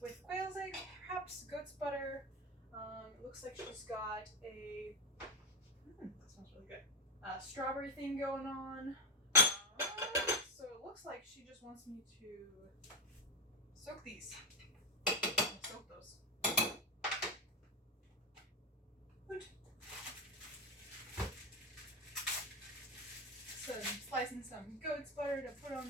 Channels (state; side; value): normal; both; correlation 0.14